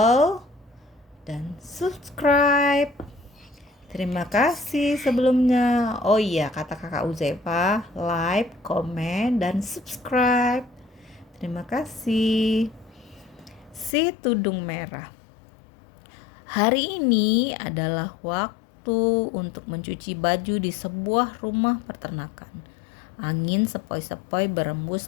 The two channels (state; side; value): drops out; right; at 13.9 s